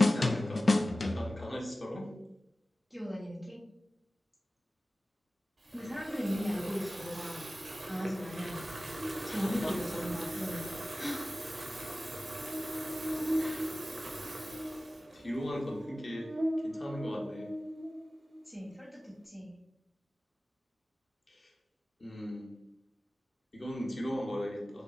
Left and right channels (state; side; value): normal; both; correlation 0.96